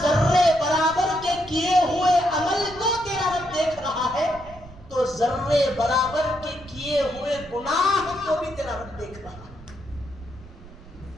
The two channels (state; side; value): noise; right; rumble, 19 dB below the sound